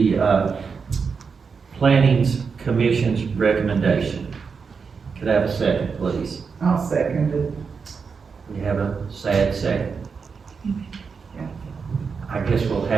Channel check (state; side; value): quieter; left; 5.5 dB